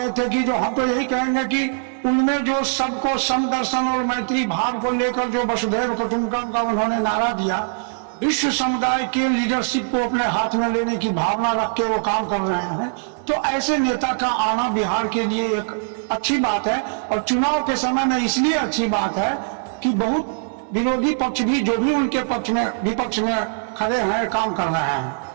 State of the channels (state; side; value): silent; left; digital silence